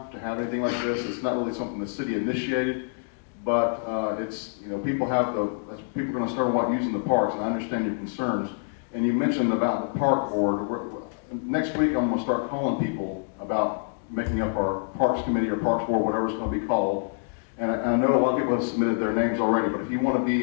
to have anything like this. It's not really something the city initiated, but it's people are going to start using the parks, and I understand your concerns. And you mentioned about the park board. Next week, I'm going to start calling people about making up our parks committee or parks board, whatever it's going to be called. And I know a lot of people have submitted their names already, but if you want to be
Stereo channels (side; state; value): right; silent; digital silence